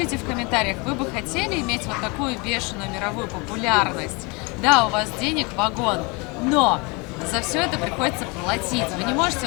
в комментариях, вы бы хотели иметь вот такую бешеную мировую популярность? Да, у вас денег вагон, но за все это приходится платить. Вы не можете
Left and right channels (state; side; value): quieter; right; 28.6 dB